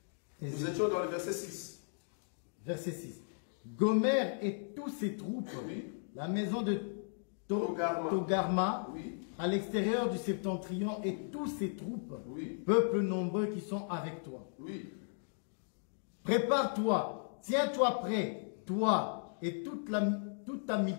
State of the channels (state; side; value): silent; right; digital silence